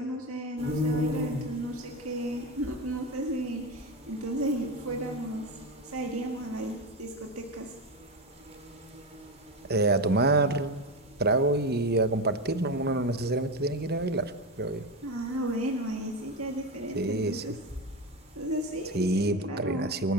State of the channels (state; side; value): normal; both; correlation 0.17